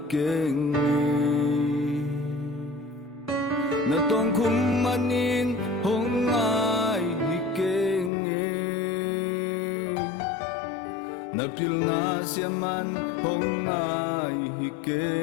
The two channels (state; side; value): drops out; right; at 8.1 s